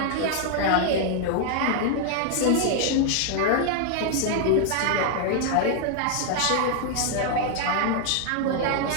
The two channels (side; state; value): both; different; correlation 0.00